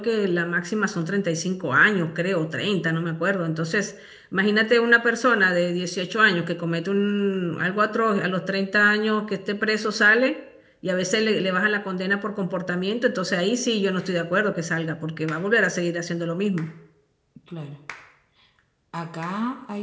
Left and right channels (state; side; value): identical; both; correlation 1.00